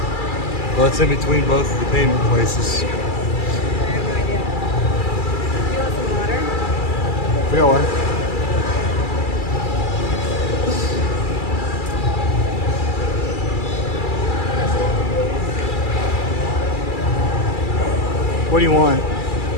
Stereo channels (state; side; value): late; right; 2.3 ms